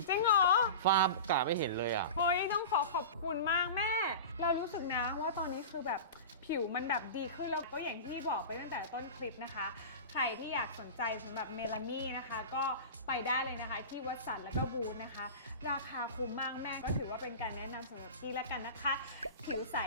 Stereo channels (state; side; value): inverted; both; correlation -0.31